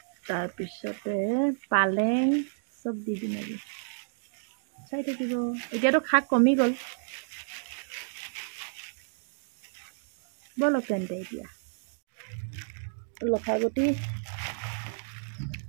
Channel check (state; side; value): silent; left; digital silence